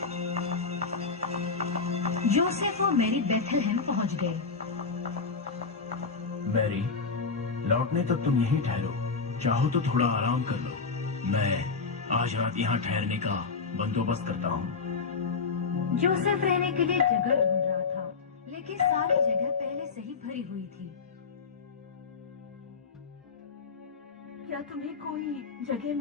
जोसेफ और मैरी बेथलेहम पहुंच गए। मैरी, लौटने तक तुम यहीं ठहरो, चाहो तो थोड़ा आराम कर लो। मैं आज रात यहाँ ठहरने का बंदोबस्त करता हूँ। जोसेफ रहने के लिए जगह ढूंढ रहा था, लेकिन सारी जगह पहले से ही भरी हुई थी। क्या तुम्हें कोई जगह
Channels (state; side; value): quieter; right; 4.8 dB